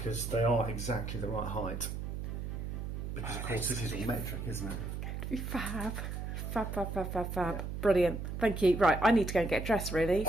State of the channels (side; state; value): right; noise; hum, 5 dB below the sound